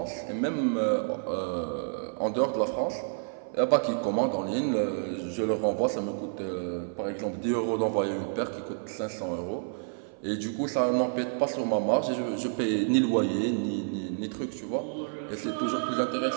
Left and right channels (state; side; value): silent; left; 55 dB below the other